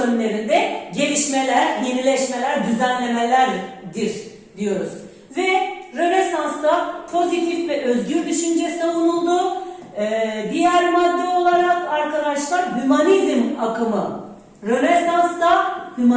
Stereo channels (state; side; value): identical; both; correlation 1.00